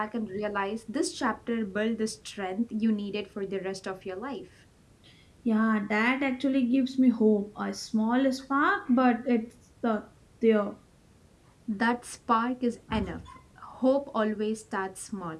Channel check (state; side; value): identical; both; correlation 1.00